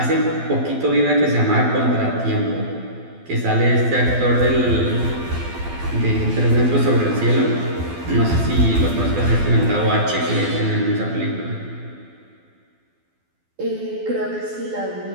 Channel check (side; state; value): left; late; 12 ms